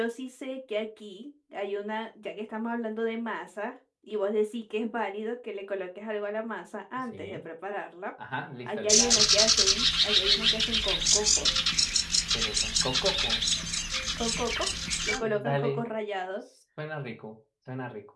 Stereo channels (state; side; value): identical; both; correlation 1.00